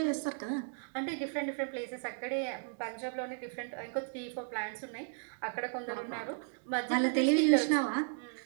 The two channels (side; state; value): left; silent; digital silence